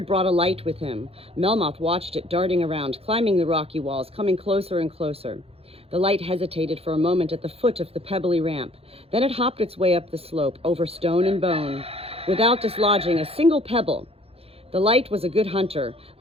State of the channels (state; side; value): late; left; 0.28 ms